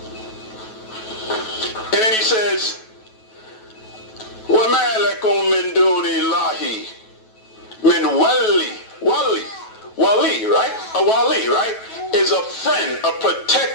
And then he says, وَمَا لَكُم مِّن دُونِ اللَّهِ مِّن wali, right? A wali, right? Is a friend, a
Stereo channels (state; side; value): late; right; 9.2 ms